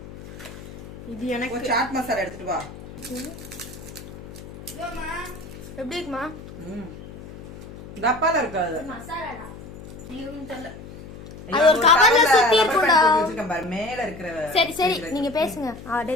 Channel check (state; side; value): noise; left; hum, 14 dB below the sound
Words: இது எனக்கு சாட் மசாலா எடுத்துட்டு வா. எப்படி இருக்குமா? டப்பால இருக்காது மசாலாடா. நீங்க தெரியல, அது ஒரு கவர்ல சுத்தி இருக்குடா. மேல இருக்கிற. சரி சரி, நீங்க பேசுங்க.